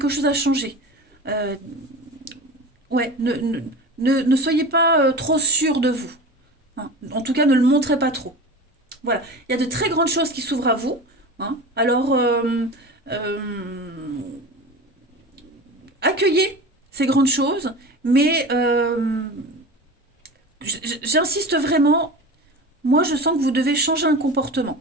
chose à changer. Euh, ouais, ne soyez pas trop sûr de vous. En tout cas, ne le montrez pas trop. Voilà, il y a de très grandes choses qui s'ouvrent à vous. Alors, euh, accueillez ces grandes choses, mais j'insiste vraiment, moi je sens que vous devez changer un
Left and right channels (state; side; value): normal; both; correlation 0.32